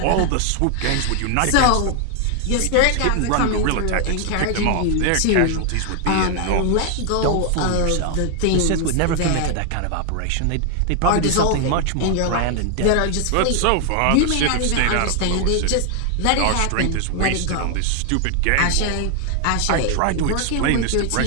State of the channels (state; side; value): different; both; correlation 0.00